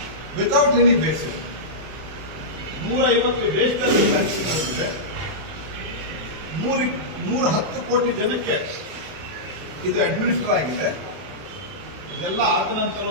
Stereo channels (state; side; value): late; left; 32 ms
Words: ವಿತೌಟ್ ಎನಿ ಬೇಸಿಸ್ 150 ದೇಶದಲ್ಲಿ ವ್ಯಾಕ್ಸಿನ್ ಬಂದಿದೆ. 110 ಕೋಟಿ ಜನಕ್ಕೆ ಇದು ಅಡ್ಮಿನಿಸ್ಟರ್ ಆಗಿದೆ. ಇದೆಲ್ಲ ಆದ